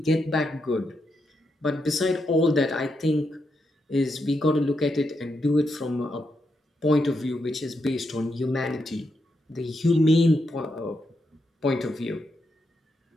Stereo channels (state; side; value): normal; both; correlation 0.83